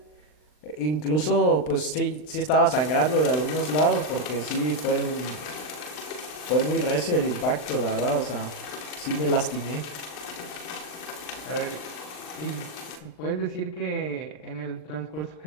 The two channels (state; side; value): late; right; 39 ms